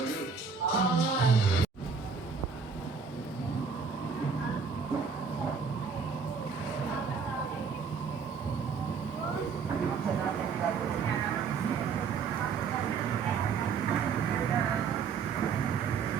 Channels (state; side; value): quieter; left; 5.6 dB